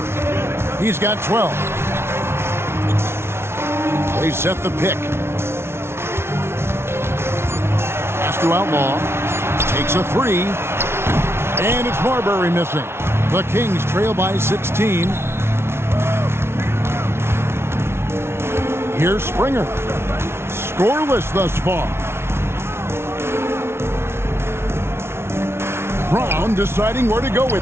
He's got 12. They set the pick. To Outlaw, takes a 3, and it's Marbury missing. The Kings trail by 16. Here's Springer. Scoreless thus far. Brown deciding where to go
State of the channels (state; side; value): late; left; 0.12 ms